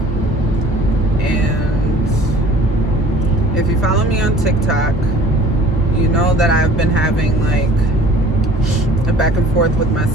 And if you follow me on TikTok, you know that I've been having like a back and forth with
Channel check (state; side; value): normal; both; correlation 0.49